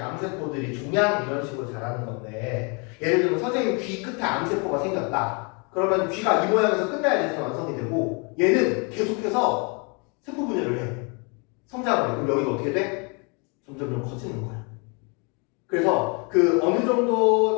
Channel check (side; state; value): right; quieter; 33.6 dB